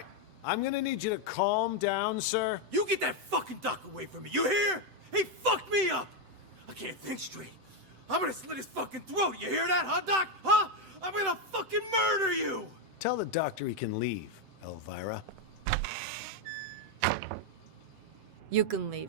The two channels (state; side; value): late; left; 7.8 ms